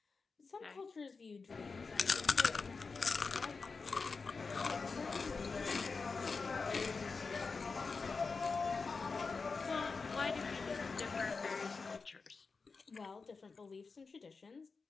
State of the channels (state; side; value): quieter; right; 4.6 dB